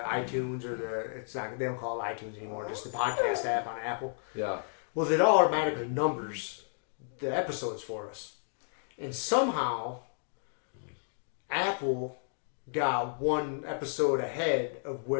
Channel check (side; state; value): right; silent; digital silence